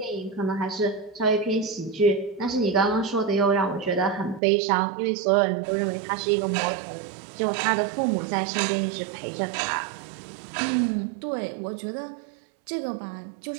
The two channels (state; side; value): drops out; left; at 4.4 s